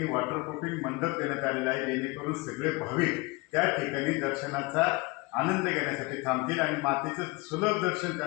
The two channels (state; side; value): quieter; right; 25.5 dB